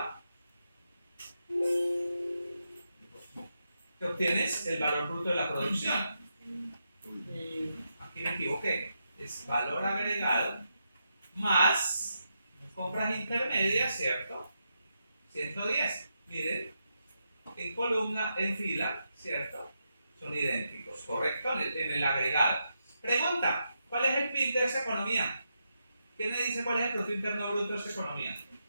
que obtienes el valor bruto de la producción. Aquí me equivoqué, es valor agregado más compras intermedias, ¿cierto? 110. Miren, en columna, en fila, ¿cierto? Son idénticos, ¿correcto? En el agregado. Pregunta, ¿cuál es el PIB de esa economía? ¿Quién me dice cuál es el Producto Interno Bruto de esa economía?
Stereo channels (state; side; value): inverted; both; correlation -0.84